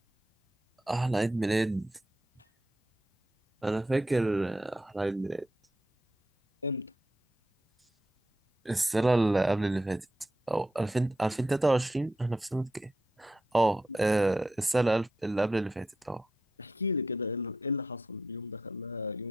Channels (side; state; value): both; normal; correlation 0.84